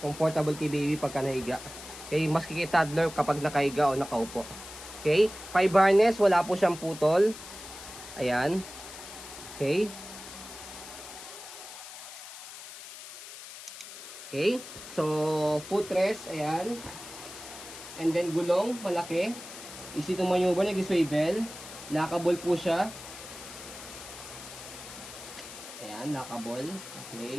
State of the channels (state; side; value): noise; left; hiss, 13 dB below the sound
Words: Comfortable kay baby pagka nahiga. Okay, maski kay toddler kapag nakahiga o nakaupo. Okay, 5 harness, wala po siyang putol. Ayan. Okay. Okay, so footrest, ayan. And then gulong, malaki. Easy to maneuver, nag-swivel. Lockable po siya. Ayan, lockable.